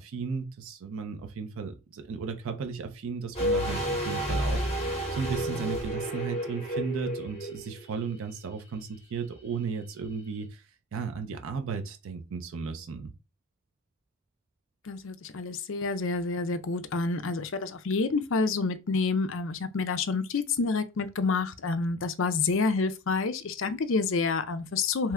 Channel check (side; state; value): both; normal; correlation 0.35